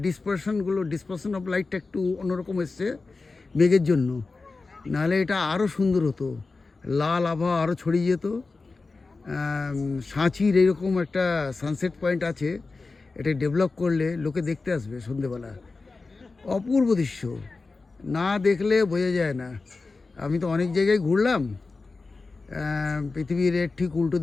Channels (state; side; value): quieter; right; 3.9 dB